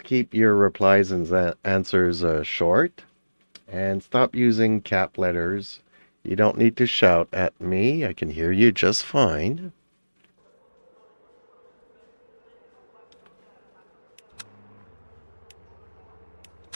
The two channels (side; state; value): both; inverted; correlation -1.00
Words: keep your replies and answers short, and stop using cap letters. You don't need to shout at me. I can hear you just fine.